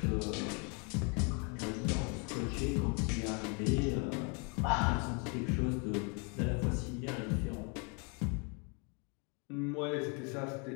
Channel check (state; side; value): quieter; right; 34.6 dB